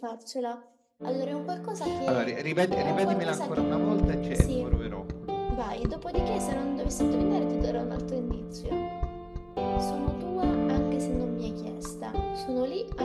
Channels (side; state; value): both; identical; correlation 1.00